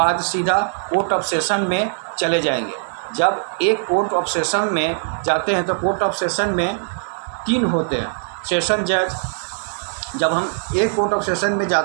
सीधा कोर्ट ऑफ सेशन में चले जाएंगे। जब एक कोर्ट ऑफ सेशन में जाते हैं तो कोर्ट ऑफ सेशन में 3 होते हैं सेशन जज। जब हम एक कोर्ट ऑफ सेशन में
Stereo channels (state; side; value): silent; left; 57 dB below the other